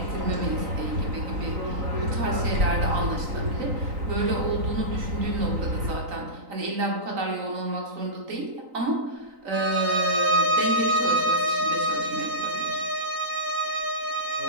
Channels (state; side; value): late; left; 3.9 ms